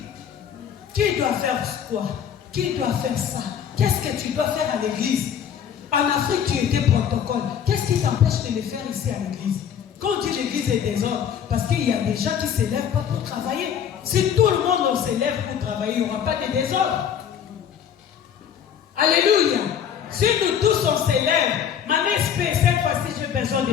Qui doit faire quoi? Qui doit faire ça? Qu'est-ce que tu dois faire à l'église? En Afrique, tu étais protocole. Qu'est-ce qui t'empêche de le faire ici à l'église? Quand on dit l'église est désordre, parce qu'il y a des gens qui ne se lèvent pas pour travailler. Si tout le monde se lève pour travailler, il n'y aura pas de désordre. Alléluia. Si nous tous on se lève, maman espère, cette fois-ci j'ai besoin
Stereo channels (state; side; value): quieter; right; 8.5 dB